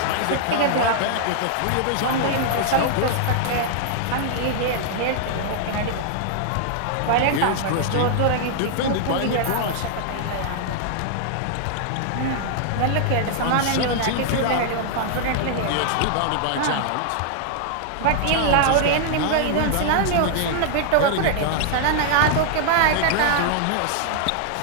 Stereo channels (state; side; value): different; both; correlation -0.01